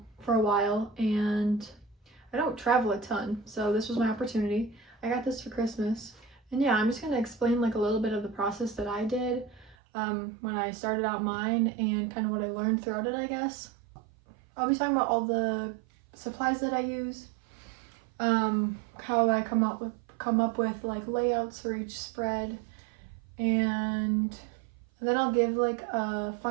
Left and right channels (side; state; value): left; drops out; at 9.8 s